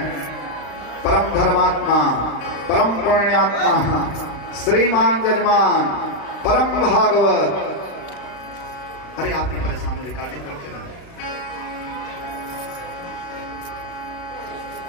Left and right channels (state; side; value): late; right; 36 ms